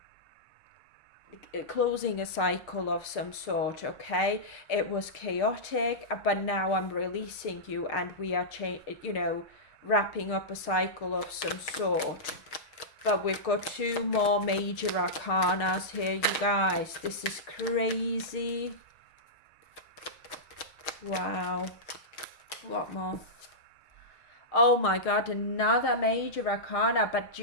closing a cycle of some sort, okay? It was chaotic, but now I'm releasing you, and we are wrapping up a cycle of some sort. But we've got two more major arcanas here, you guys. This is crazy. Wow. What more? Oh my god, another major arcana. But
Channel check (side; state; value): right; late; 6.6 ms